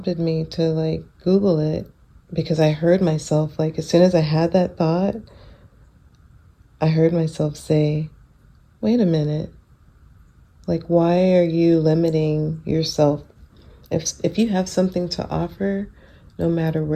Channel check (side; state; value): both; identical; correlation 1.00